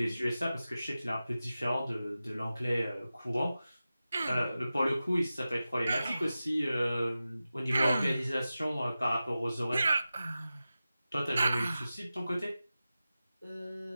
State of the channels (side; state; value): both; inverted; correlation -0.94